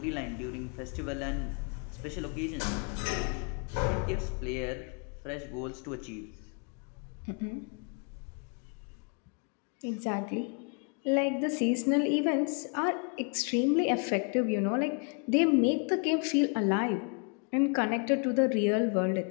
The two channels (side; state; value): right; quieter; 37.2 dB